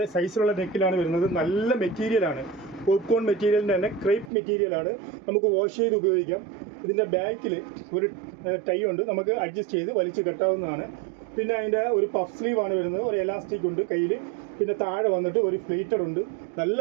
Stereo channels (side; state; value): left; drops out; at 4.3 s